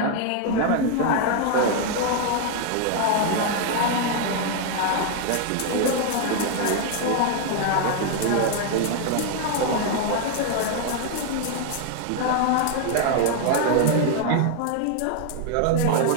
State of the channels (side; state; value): both; different; correlation 0.00